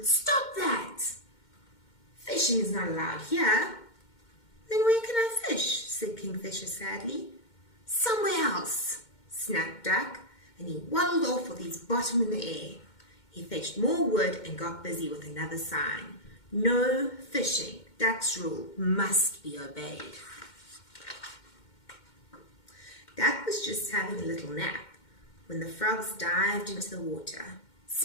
"stop that! Fishing is not allowed here." "Then where can I fish?" said Kingfisher sadly. "Somewhere else," snapped Duck, and he waddled off with his bottom in the air. He fetched more wood and got busy with another sign. "No fishing. Duck's rule must be obeyed." Duck was just having a little nap when the frogs dived into the water.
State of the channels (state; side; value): late; right; 2.1 ms